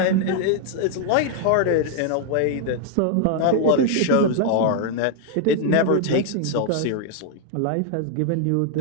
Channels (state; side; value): different; both; correlation 0.00